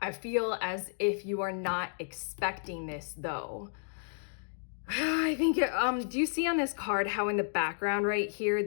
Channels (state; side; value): silent; right; digital silence